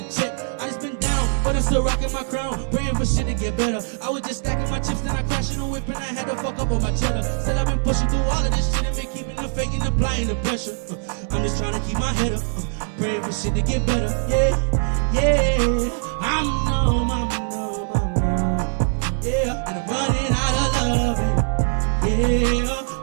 check. I just been down, but I'm still rocking my crown, praying for shit to get better. I was just stacking my chips, then I crashed in a whip and I had to fuck up on my cheddar. Still I've been pushing through all of this shit and been keeping the faith and applying the pressure. I'm just trying to keep my head up, praying for shit to get better. Yeah, I'm numb, yeah, and I'm running out of love. Yeah,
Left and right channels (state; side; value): silent; left; digital silence